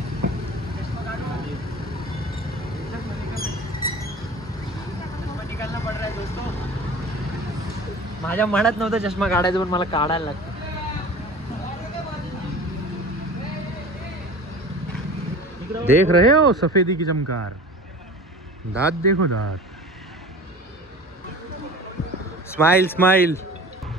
माझ्या मनात नव्हतं चष्मा काढायचं, पण मला काढायला लागतं. देख रहे हो सफेदी की चमकार. दांत देखो दांत. Smile smile.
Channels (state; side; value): normal; both; correlation 0.39